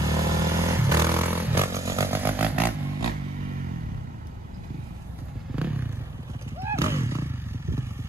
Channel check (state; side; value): normal; both; correlation 0.66